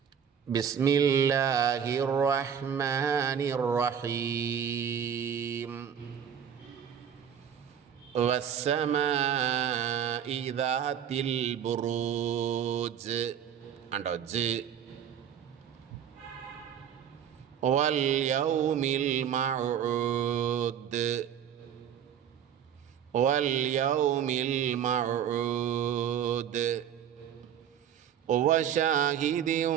ബിസ്മില്ലാഹിർ റഹ്മാനിർ റഹീം. വസ്സമാഇ ദാത്തിൽ ബുറൂജ്. കണ്ടോ? ജ്. വൽ യൗമിൽ മൗഊദ്. വൽ യൗമിൽ മൗഊദ്. വശാഹിദിൻ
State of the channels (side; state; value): left; quieter; 8.8 dB